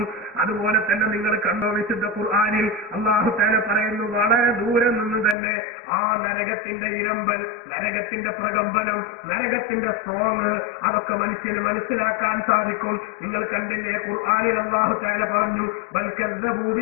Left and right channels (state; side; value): drops out; right; at 5.4 s